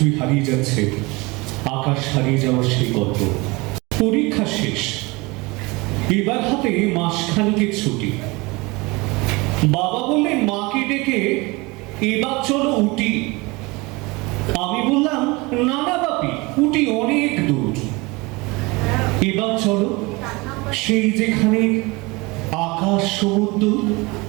হারিয়ে যাচ্ছে, আকাশ হারিয়ে যাওয়ার সেই গল্প। পরীক্ষা শেষ, এবার হাতে মাসখানেকের ছুটি। বাবা বললেন মাকে ডেকে এবার চলো উটি। আমি বললাম না না বাপি, উটি অনেক দূর, এবার চলো সেই যেখানে আকাশ সমুদ্র।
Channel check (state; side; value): quieter; left; 24.7 dB